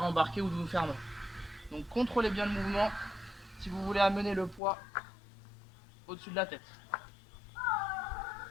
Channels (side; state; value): right; drops out; at 4.6 s